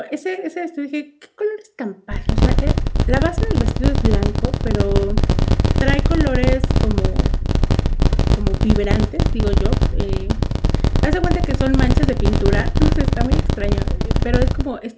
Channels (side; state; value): both; identical; correlation 1.00